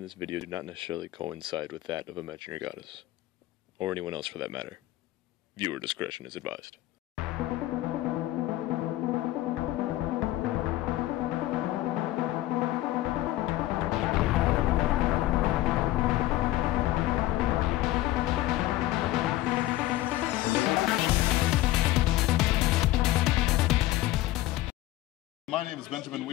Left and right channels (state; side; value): quieter; right; 16.1 dB